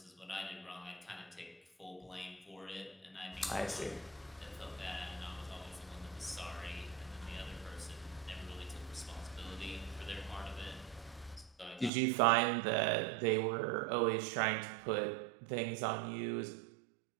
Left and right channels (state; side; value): drops out; left; at 11.9 s